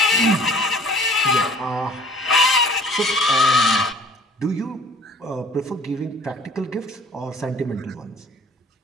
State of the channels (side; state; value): both; normal; correlation 0.49